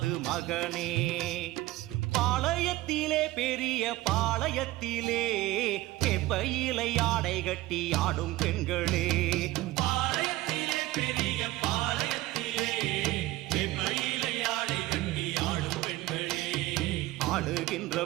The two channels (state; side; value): quieter; left; 17.9 dB